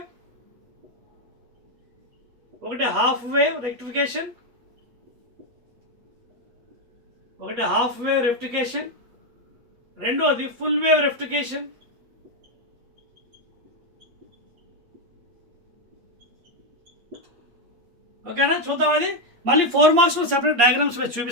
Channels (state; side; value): late; left; 8.5 ms